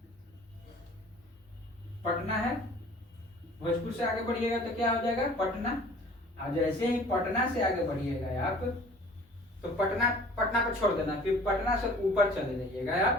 पटना है। भोजपुर से आगे बढ़िएगा तो क्या हो जाएगा पटना, और जैसे ही पटना से आगे बढ़िएगा आप तो पटना पर छोड़ देना, फिर पटना से ऊपर चले जाइएगा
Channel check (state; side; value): normal; both; correlation 0.49